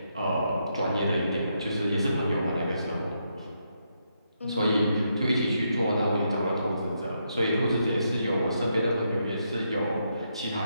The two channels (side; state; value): both; inverted; correlation -0.80